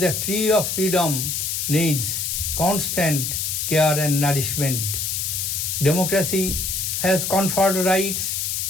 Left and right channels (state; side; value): noise; left; hiss, 1 dB below the sound